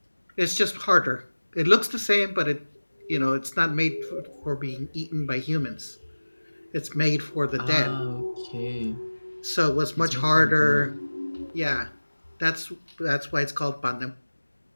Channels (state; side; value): inverted; both; correlation -1.00